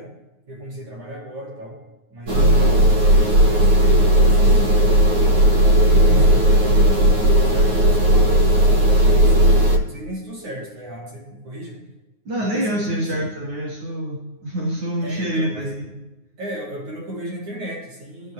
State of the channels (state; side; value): late; left; 9.5 ms